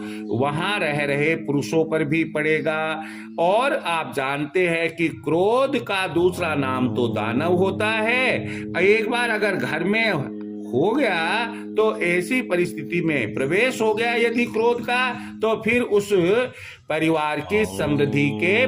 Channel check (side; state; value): both; identical; correlation 1.00